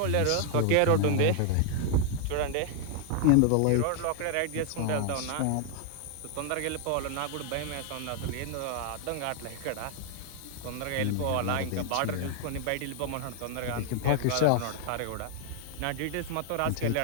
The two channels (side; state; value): both; different; correlation 0.00